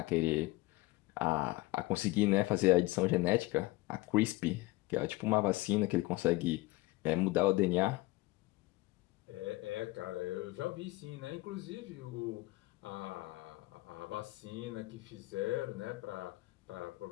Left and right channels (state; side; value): quieter; right; 20.2 dB